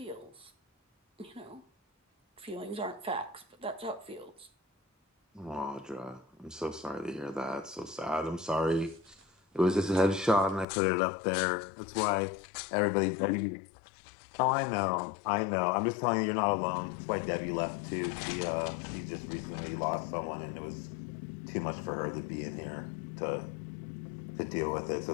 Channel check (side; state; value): right; drops out; at 10.7 s